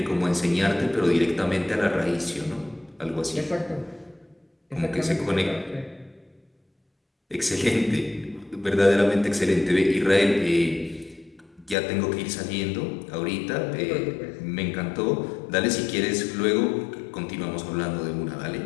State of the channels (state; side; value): drops out; right; at 11.8 s